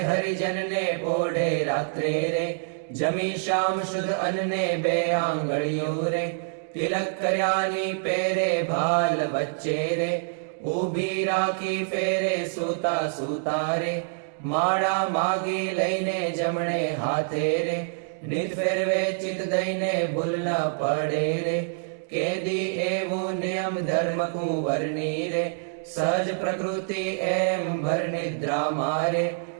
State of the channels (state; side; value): silent; left; digital silence